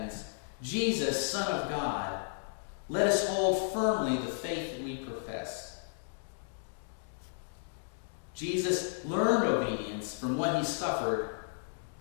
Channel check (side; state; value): right; silent; digital silence